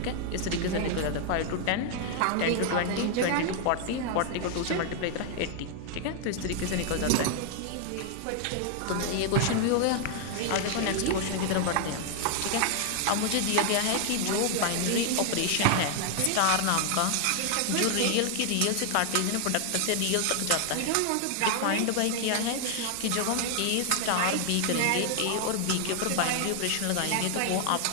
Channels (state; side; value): different; both; correlation 0.00